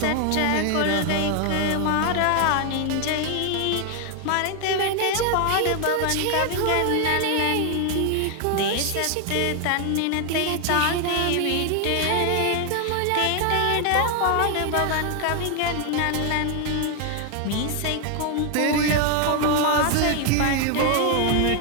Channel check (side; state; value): both; different; correlation 0.00